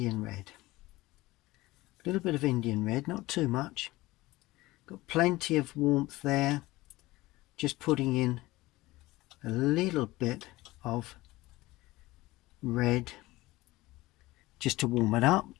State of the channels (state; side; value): quieter; right; 19.1 dB